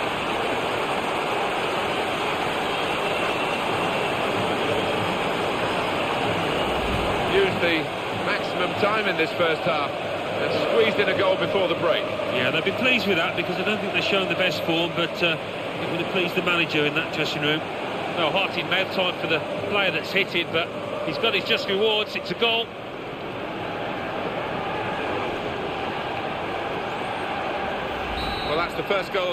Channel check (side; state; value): both; identical; correlation 1.00